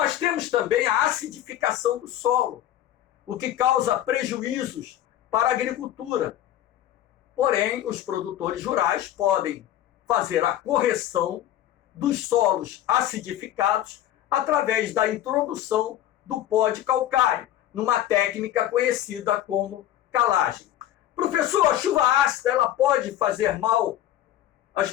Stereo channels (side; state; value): right; quieter; 12.5 dB